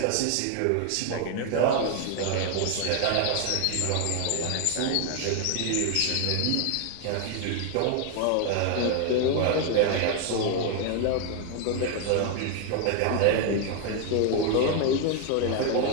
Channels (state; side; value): different; both; correlation 0.00